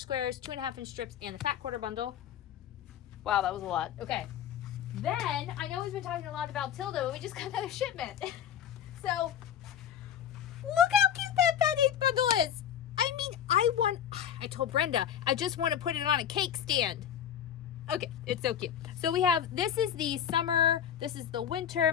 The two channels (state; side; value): quieter; right; 9.5 dB